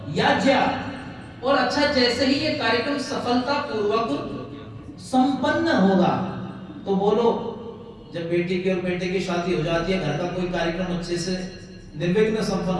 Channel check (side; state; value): both; identical; correlation 1.00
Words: याज्ञा। और अच्छा, जैसे ही ये कार्यक्रम सफलता पूर्वक संपन्न होगा, तो बोलो जब बेटी की और बेटे की शादी हो जाती है, घर का कोई कार्यक्रम अच्छे से निर्विघ्न संपन्न